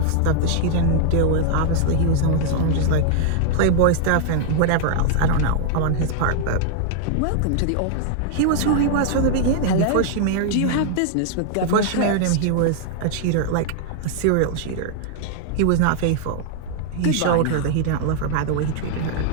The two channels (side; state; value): both; different; correlation 0.00